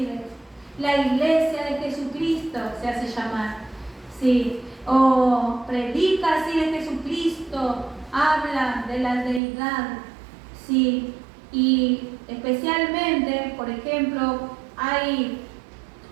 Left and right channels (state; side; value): drops out; left; at 9.4 s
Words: La iglesia de Jesucristo se hace llamar. Sí. O predica así de Jesucristo, habla de la deidad. Sí. Y especialmente, por ejemplo, hay